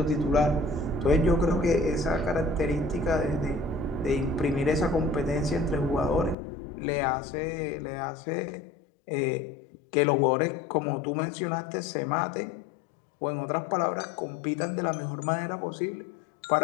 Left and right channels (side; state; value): right; drops out; at 6.4 s